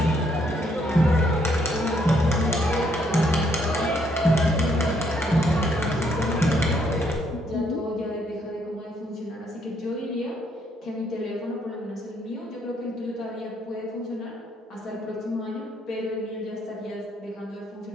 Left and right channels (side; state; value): both; normal; correlation 0.70